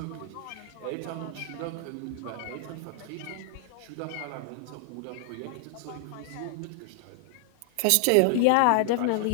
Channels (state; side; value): different; both; correlation 0.00